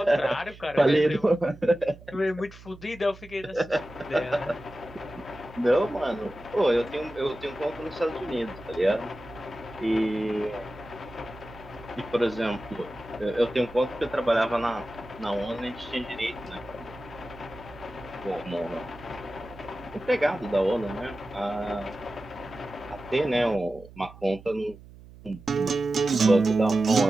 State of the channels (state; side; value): noise; right; hum, 19 dB below the sound